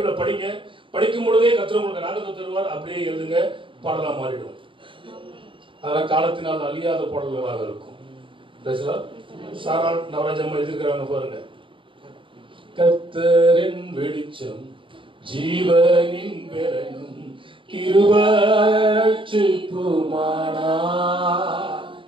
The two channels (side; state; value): left; late; 0.25 ms